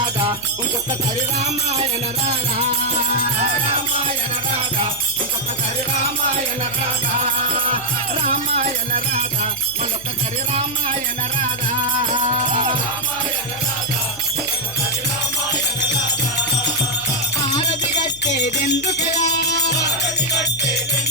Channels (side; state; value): left; noise; hum, 21 dB below the sound